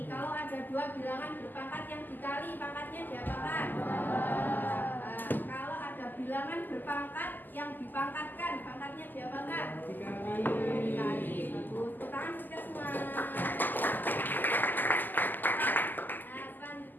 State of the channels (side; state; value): right; late; 0.087 ms